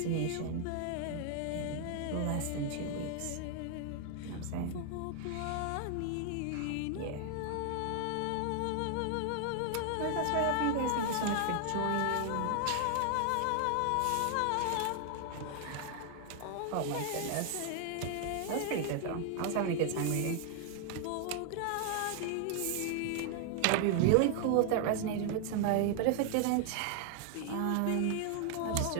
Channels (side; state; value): both; different; correlation 0.00